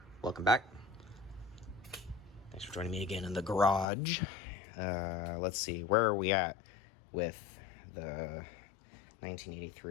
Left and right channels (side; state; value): right; drops out; at 3.9 s